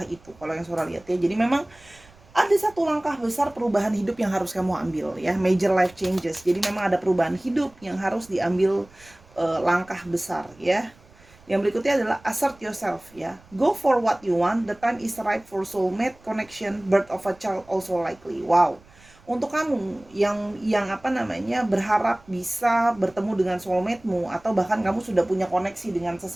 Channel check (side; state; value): right; noise; rumble, 27 dB below the sound